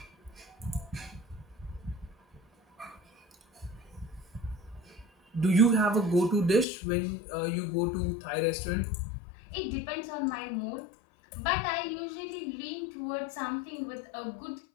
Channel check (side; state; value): right; drops out; at 6.7 s